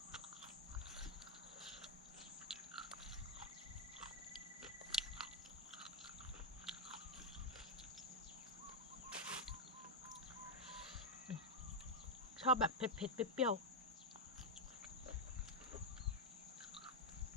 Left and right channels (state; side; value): normal; both; correlation 0.00